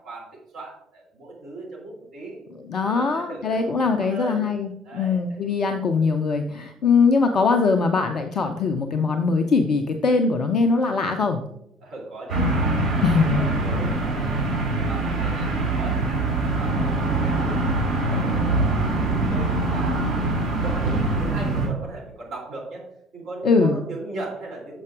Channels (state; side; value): normal; both; correlation 0.45